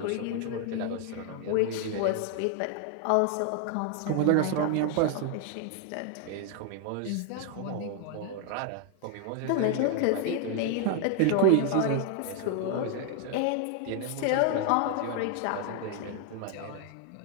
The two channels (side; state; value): both; different; correlation 0.00